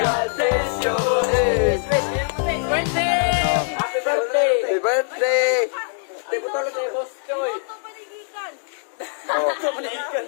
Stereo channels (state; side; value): silent; right; digital silence